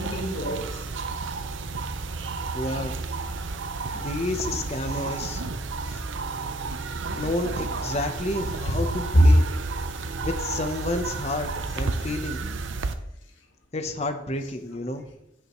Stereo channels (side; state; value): both; normal; correlation 0.66